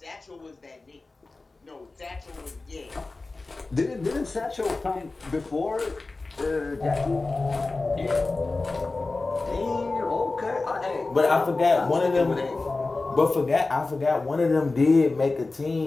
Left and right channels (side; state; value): right; quieter; 3.5 dB